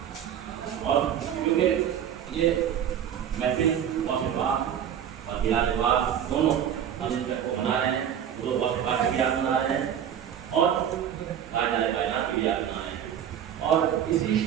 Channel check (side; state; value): left; quieter; 9.4 dB